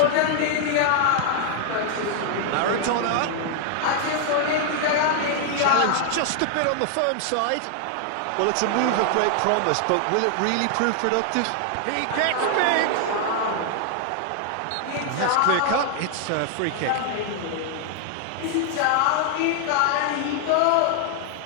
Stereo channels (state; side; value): different; both; correlation 0.00